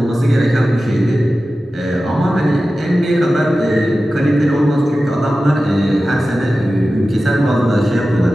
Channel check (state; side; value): normal; both; correlation 0.94